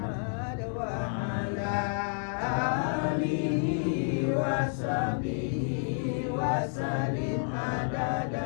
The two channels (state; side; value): silent; right; digital silence